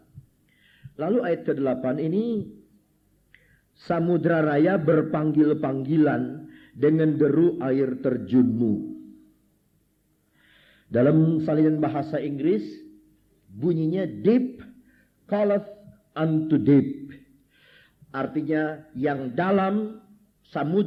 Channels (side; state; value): both; identical; correlation 1.00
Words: Lalu ayat ke-8 ini, samudra raya berpanggil-panggilan dengan deru air terjunmu. Dalam salinan bahasa Inggris, bunyinya deep calleth unto deep. Artinya yang dalam,